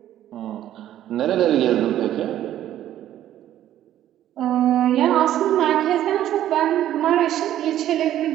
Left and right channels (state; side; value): quieter; left; 12.2 dB